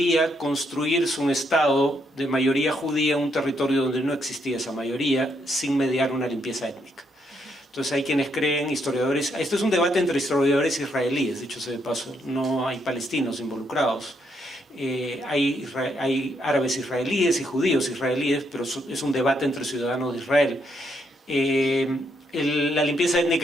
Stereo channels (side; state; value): both; normal; correlation 0.75